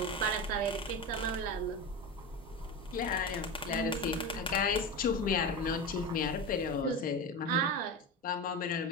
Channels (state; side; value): normal; both; correlation 0.22